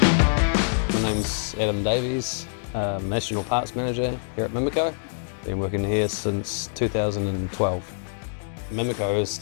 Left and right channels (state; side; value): silent; right; digital silence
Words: name's Adam Davies, National Parts Manager here at MIMICO. Been working here since 2012. MIMICO has